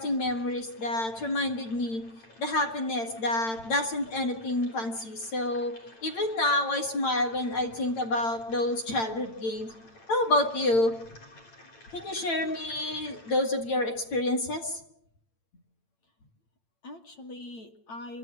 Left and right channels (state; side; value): late; right; 8.9 ms